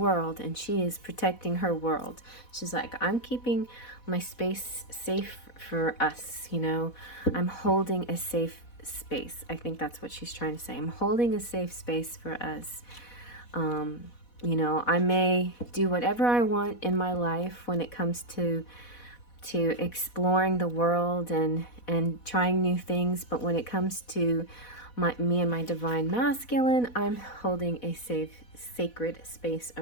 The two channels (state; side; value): late; right; 4.1 ms